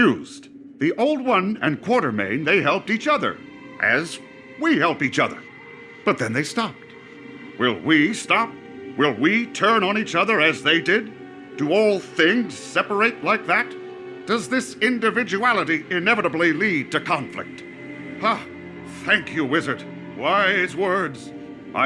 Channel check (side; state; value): both; identical; correlation 1.00